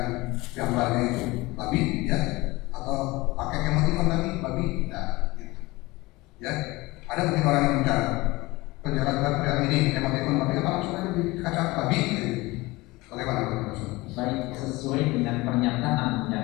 gambarnya itu babi, ya, atau pakai emotikon lagi babi, nah, gitu. Ya. Ada mungkin orang yang bicara penjelasan pria ini emotikon babi apa maksudnya di kaca babi? Bagaimana menurut? Baik, sesuai dengan pernyataan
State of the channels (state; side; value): quieter; right; 21.5 dB